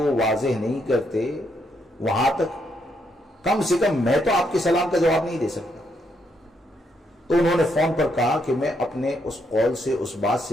واضح نہیں کرتے وہاں تک کم سے کم میں تو آپ کے سلام کا جواب نہیں دے سکتا. تو انہوں نے فون پر کہا کہ میں اپنے اس قول سے، اس بات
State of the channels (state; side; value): normal; both; correlation 0.76